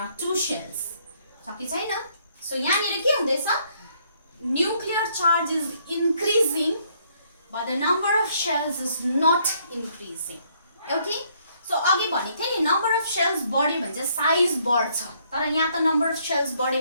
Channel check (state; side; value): inverted; both; correlation -0.68